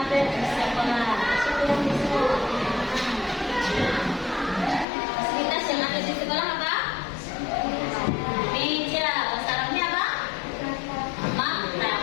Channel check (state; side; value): drops out; right; at 4.9 s